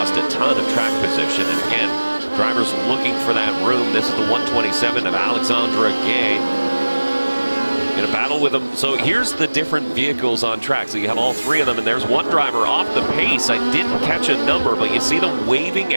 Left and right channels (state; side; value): inverted; both; correlation -1.00